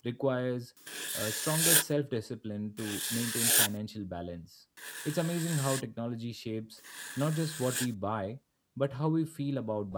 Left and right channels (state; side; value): identical; both; correlation 1.00